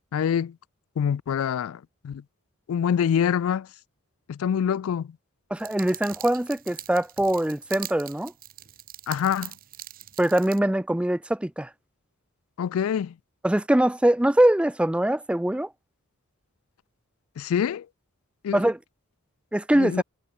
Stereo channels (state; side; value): normal; both; correlation 0.75